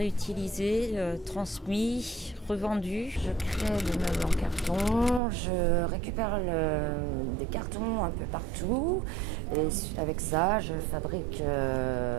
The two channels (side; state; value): left; drops out; at 5.2 s